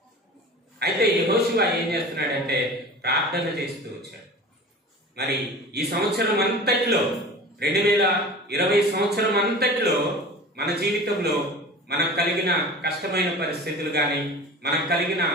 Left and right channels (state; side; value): normal; both; correlation 0.37